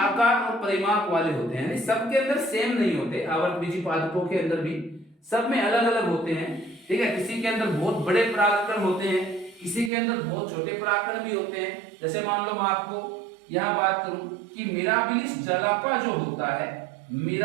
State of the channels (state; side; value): drops out; left; at 9.9 s